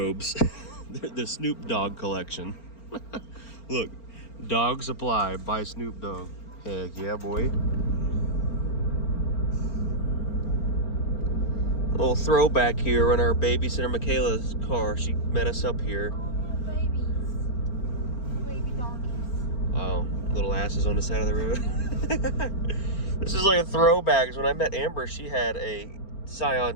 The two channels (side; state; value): right; late; 4.4 ms